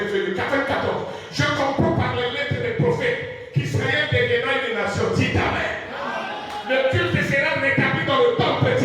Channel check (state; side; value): identical; both; correlation 1.00